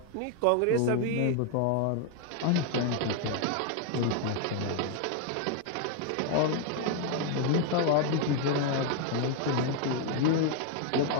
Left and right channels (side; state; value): both; different; correlation 0.00